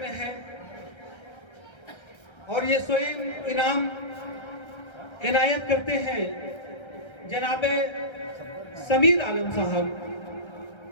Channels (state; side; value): late; right; 1.3 ms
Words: है, और ये स्वयं इनाम इनायत करते हैं जनाबे समीर आलम साहब।